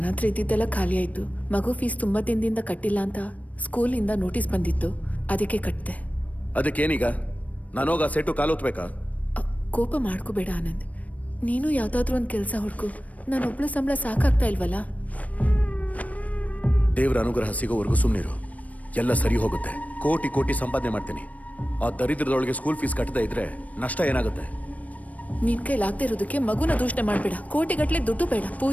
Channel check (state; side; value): late; right; 0.069 ms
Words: ಹತ್ರ ಇದ್ದಿದ್ದೆಲ್ಲ ಖಾಲಿ ಆಯ್ತು. ಮಗು ಫೀಸ್ ತುಂಬಾ ದಿನದಿಂದ ಕಟ್ಟಿಲ್ಲ ಅಂತ ಸ್ಕೂಲಿಂದ ನೋಟಿಸ್ ಬಂದಿತ್ತು, ಅದಕ್ಕೆ ಕಟ್ಟಿದೆ. ಅದಕ್ಕೇನೀಗ? ನಾನೋಗ ಸೆಟ್ಟು ಕಾಲೋತ್ಬೇಕಾ? ಕೋಪ ಮಾಡ್ಕೋಬೇಡ ಆನಂದ್. ನೀನು ಯಾವ್ದಾದ್ರೂ ಒಂದು ಕೆಲಸ ಹುಡ್ಕು. ನಾನೊಬ್ಳು ಸಂಬಳ ಸಾಕಾಗ್ತಾ ಇಲ್ವಲ್ಲ. ದೇವರ ಅನುಗ್ರಹ ಸಿಗೋವರೆಗೂ ಸುಮ್ಮನಿರು, ಎಲ್ಲ ಸರಿ ಹೋಗುತ್ತೆ. ಕೋಟಿ ಕೋಟಿ ಸಂಪಾದನೆ ಮಾಡ್ತೀನಿ. ಆ ದರಿದ್ರದೊಳಗೆ ಸ್ಕೂಲ್ ಫೀಸ್ ಕಟ್ಟದೇ ಇದ್ರೆ ನಷ್ಟ ಏನಾಗುತ್ತೆ? ನಿನ್ ಕೈಲಾಗದೆ ಇರೋದಕ್ಕೆ ಮಗುನ ದೂಷಣೆ ಮಾಡ್ಬೇಡ. ಕೋಟಿಗಟ್ಲೆ ದುಡ್ಡು ಬೇಡ.